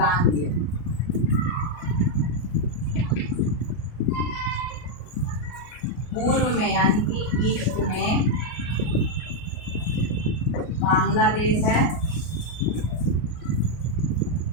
भी है। पूर्व में यानी कि ईस्ट में बांग्लादेश है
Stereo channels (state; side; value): late; right; 33 ms